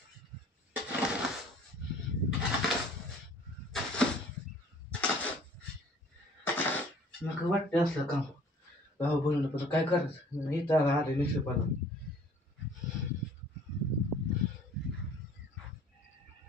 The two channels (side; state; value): both; normal; correlation 0.53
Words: नका वाटते असलं काम भाऊ बनवलं पण काय करायचं इथं आले निशेपाला